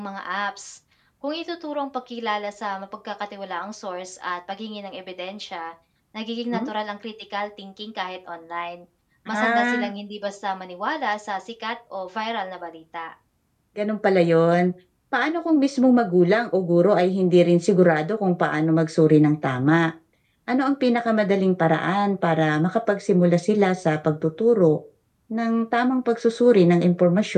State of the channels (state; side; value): identical; both; correlation 1.00